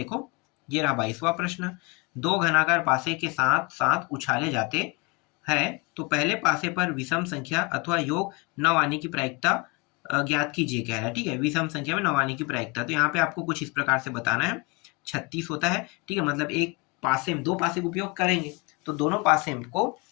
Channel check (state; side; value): quieter; right; 28.7 dB